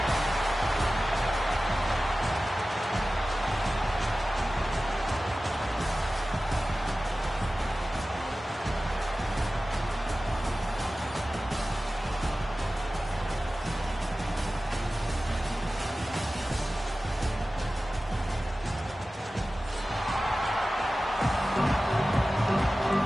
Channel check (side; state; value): both; normal; correlation 0.96